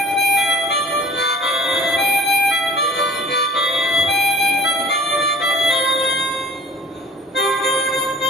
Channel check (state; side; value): normal; both; correlation 0.47